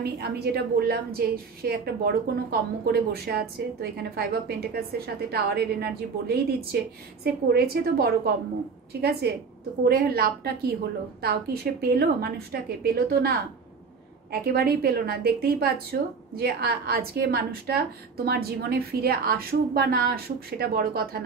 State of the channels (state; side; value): quieter; left; 5.2 dB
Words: আমি যেটা বললাম যে সে একটা বড় কোনো কর্ম করে বসে আছে, তো এখানে 5 অফ পেন্টিকলসের সাথে টাওয়ারের এনার্জি বলেই দিচ্ছে সে করেছে তো বড় কর্ম। ঠিক আছে? তো করে লাভটা কি হলো? তাও কি সে পেলো? মানুষটাকে পেলো তো না, একেবারেই পেলো না। দেখতেই পাচ্ছ যে আজকে মানুষটা তোমার জীবনে ফিরে আসুক বা না আসুক সেটা বড় কথা